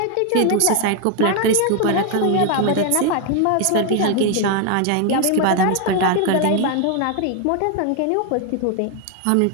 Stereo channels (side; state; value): both; different; correlation 0.00